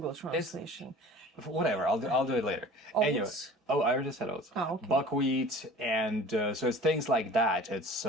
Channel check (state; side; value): normal; both; correlation 0.43